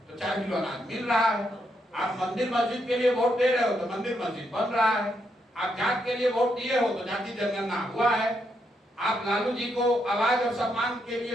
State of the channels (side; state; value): both; normal; correlation 0.79